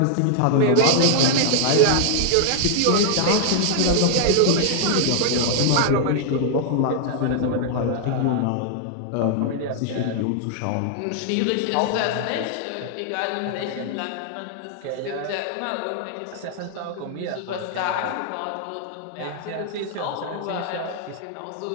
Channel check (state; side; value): different; both; correlation 0.00